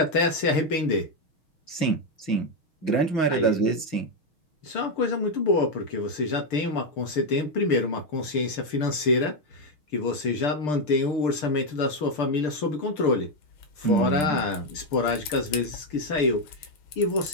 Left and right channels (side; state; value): right; late; 6.7 ms